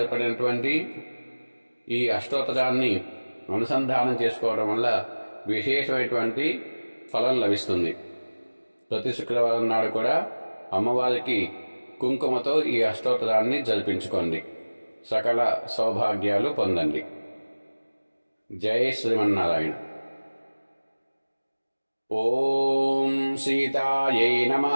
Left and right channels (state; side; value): inverted; both; correlation -1.00